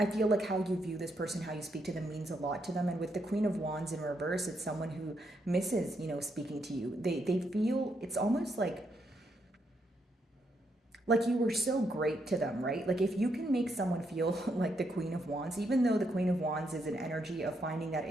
feel like how you view this person, how you speak to them means a lot to them. And with the Queen of Wands in reverse, it's someone who misses, speaking to you. They feel, it's almost like you were so great to them, right? Like if you can make someone feel like the Queen of Wands, even though the Queen of Wands is an energy of finding that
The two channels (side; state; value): both; normal; correlation 0.78